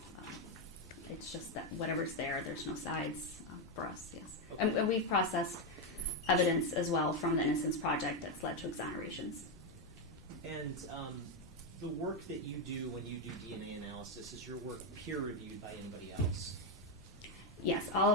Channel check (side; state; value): both; normal; correlation 0.05